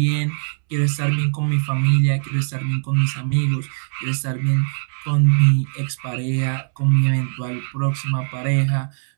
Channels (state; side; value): silent; left; 64 dB below the other